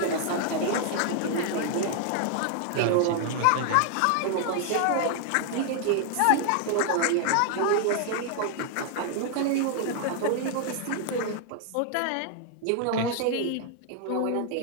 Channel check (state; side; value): different; both; correlation 0.00